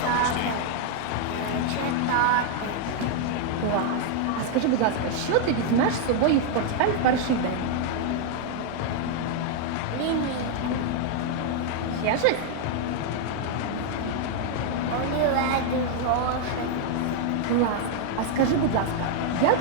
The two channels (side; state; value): both; different; correlation 0.00